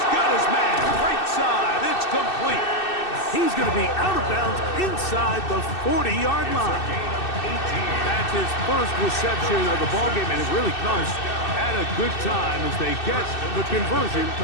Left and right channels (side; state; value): right; late; 2.6 ms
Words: got his man. Right side. It's complete. He's going to be out of bounds inside the 40-yard line. That's his first reception of the ballgame, and it really comes at a good time as they get the conversion